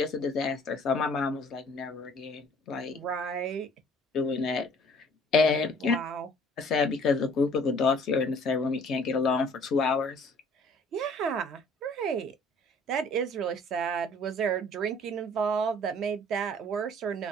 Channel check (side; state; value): both; normal; correlation 0.54